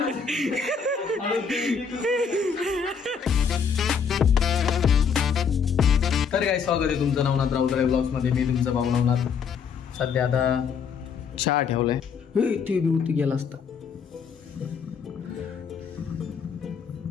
तर काय स्वागत आहे तुमचं नवनाथ राऊतराय ब्लॉग्स मध्ये. मी तुमचा भाऊ नवनाथ. सध्या आता चहा ठेवलाय. ते बी गेला असता.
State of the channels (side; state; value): right; quieter; 6.4 dB